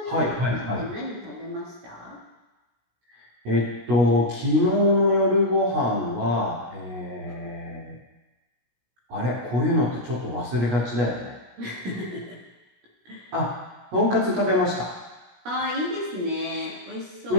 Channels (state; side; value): late; left; 16 ms